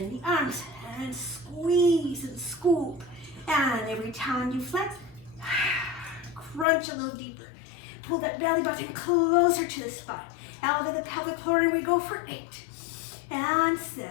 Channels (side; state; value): right; drops out; at 6.7 s